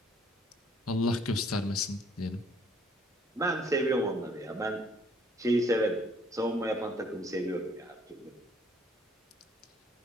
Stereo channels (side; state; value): both; normal; correlation 0.61